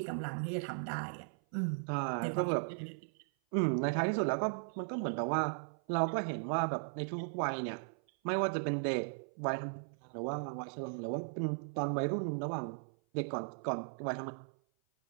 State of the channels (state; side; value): silent; left; 53 dB below the other